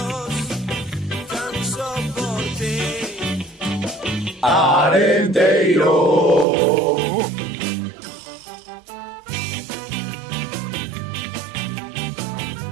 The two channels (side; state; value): left; drops out; at 6.5 s